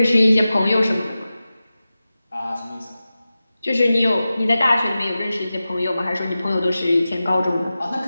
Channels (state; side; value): inverted; both; correlation -0.94